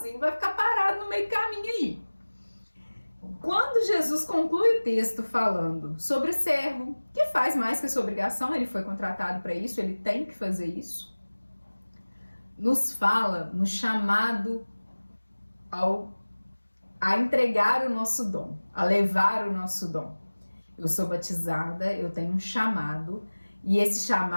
vai ficar parado no meio do caminho aí. Quando Jesus conclui o texto falando sobre o servo, que faz mais que a sua obrigação, ele foi contratado para isso, ele tem que fazer isso, nos fala no chamado a entregar o nosso dom, a levar o nosso dom. Eu sou batizada, eu tenho um chamado, e esse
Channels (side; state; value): both; inverted; correlation -1.00